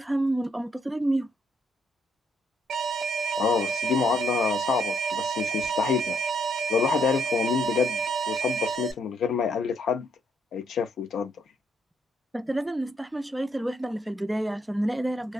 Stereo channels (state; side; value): normal; both; correlation 0.73